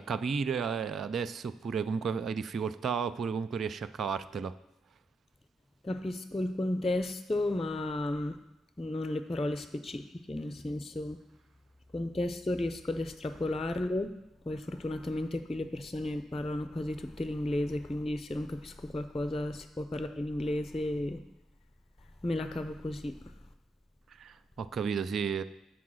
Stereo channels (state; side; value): normal; both; correlation 0.82